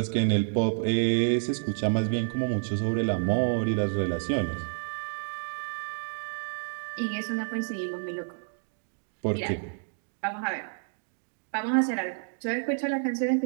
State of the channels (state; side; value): silent; left; digital silence